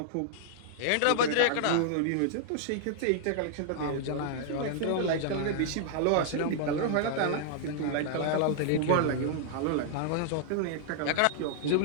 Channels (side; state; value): both; different; correlation -0.01